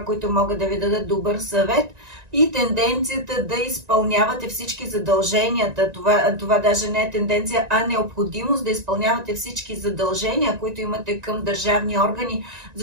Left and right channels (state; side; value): late; left; 1.9 ms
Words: които могат да ви дадат добър съвет и тенденцията да изпълнявате всички задълженията. Това даже не е тенденция, а необходимост да изпълнявате всички задължения, които имате към държавни органи,